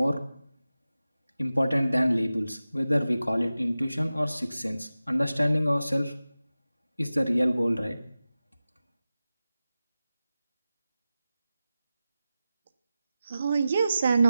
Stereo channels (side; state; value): both; inverted; correlation -0.94